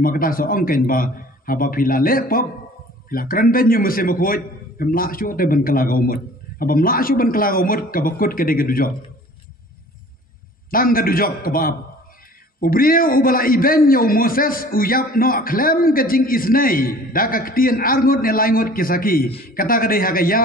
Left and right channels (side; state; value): both; normal; correlation 0.48